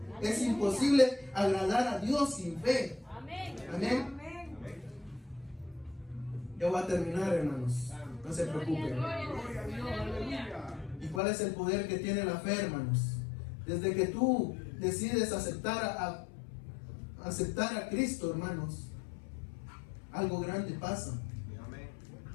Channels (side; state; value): right; drops out; at 11.2 s